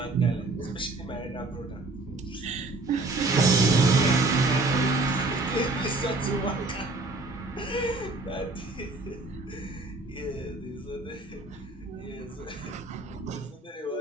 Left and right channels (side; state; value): left; quieter; 3.1 dB